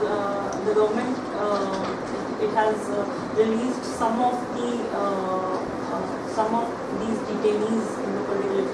government it has released some of these detainees in the political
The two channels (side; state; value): both; identical; correlation 1.00